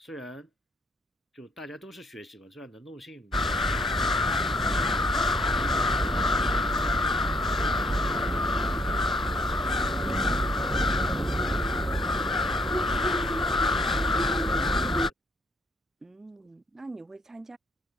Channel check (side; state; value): both; normal; correlation 0.67